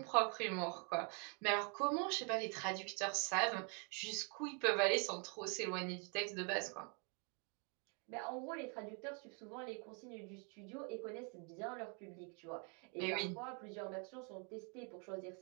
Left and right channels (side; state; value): left; quieter; 36.4 dB